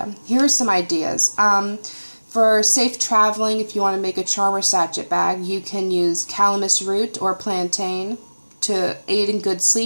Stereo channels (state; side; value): inverted; both; correlation -1.00